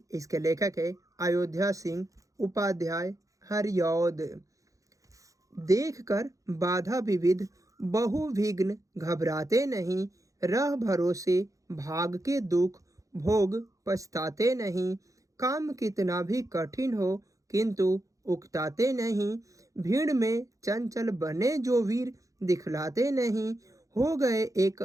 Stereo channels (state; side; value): late; left; 0.16 ms